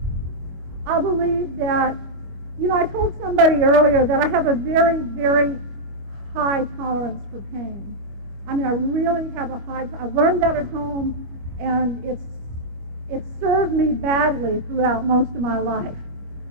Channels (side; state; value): left; late; 25 ms